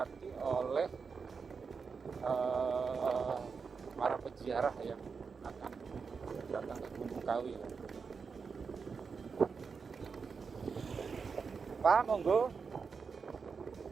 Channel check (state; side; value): quieter; left; 5.4 dB